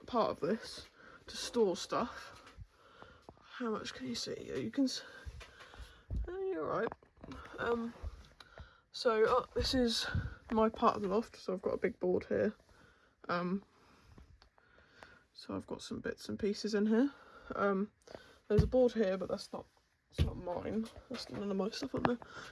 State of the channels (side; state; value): both; identical; correlation 1.00